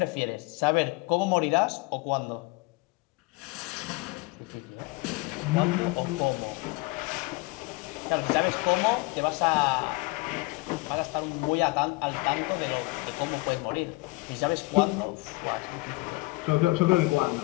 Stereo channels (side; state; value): right; quieter; 24.0 dB